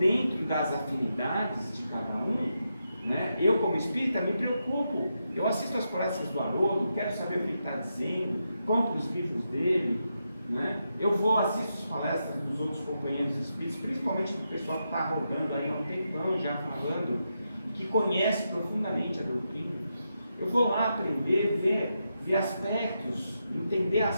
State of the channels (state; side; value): inverted; both; correlation -0.85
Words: das afinidades de cada um, né, eu como espírita me preocupo. Eu assisto as palestras do Haroldo, quero saber o que ele está dizendo, compro os livros dele, né? Eu assisto as palestras dos outros companheiros espíritas, principalmente do pessoal que está rodando aí há um tempão já falando, que conhece profundamente a doutrina. Eu vou lá aprender, ver aspectos, entender